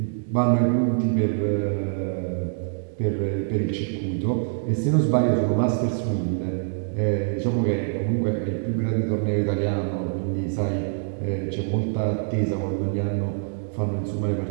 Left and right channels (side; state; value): left; silent; digital silence